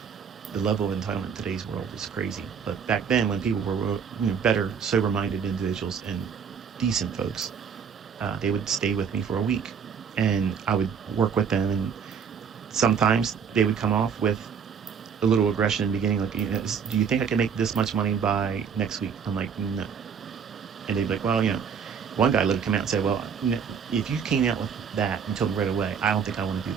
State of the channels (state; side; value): quieter; left; 6.8 dB